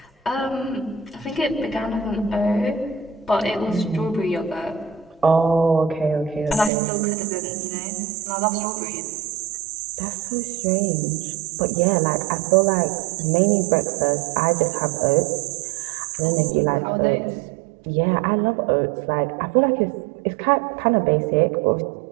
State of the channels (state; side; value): drops out; left; at 6.7 s